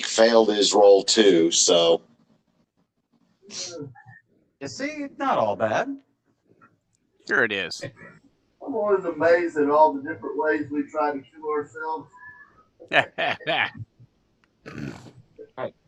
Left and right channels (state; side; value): identical; both; correlation 1.00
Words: failed his roll too, so. You see, not all bad. Sure it is. I'm always amazed at all the different ways we try to kill ourselves.